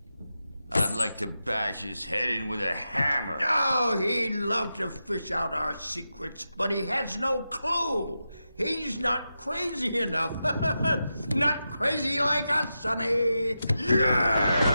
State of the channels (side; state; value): both; inverted; correlation -0.89